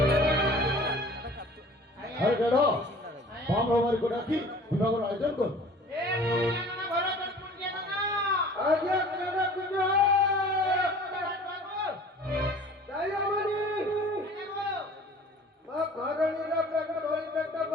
হরে গেল বাম হবার করে রাখি বিভাগের আয়োজন কর এ পুণ্যানা ঘর কর পুণ্যানা আজ্ঞা কেন কুঞ্জ দয়ামণি মা ঘরণীর প্রেম ধরি পেট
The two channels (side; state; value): both; normal; correlation 0.47